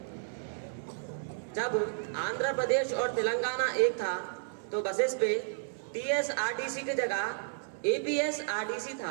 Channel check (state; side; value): silent; left; 56 dB below the other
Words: जब आंध्र प्रदेश और तेलंगाना एक था तो बसेस पे TSRTC की जगह APSRTC